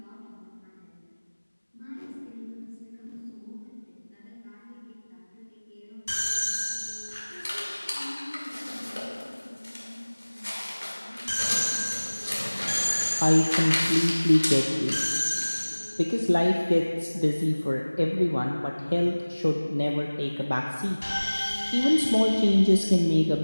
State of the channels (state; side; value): inverted; both; correlation -1.00